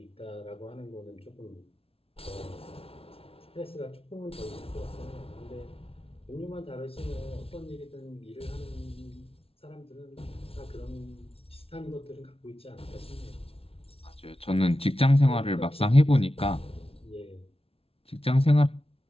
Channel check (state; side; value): late; right; 0.27 ms